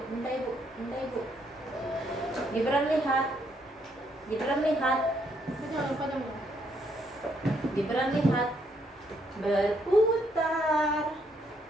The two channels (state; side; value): normal; both; correlation 0.73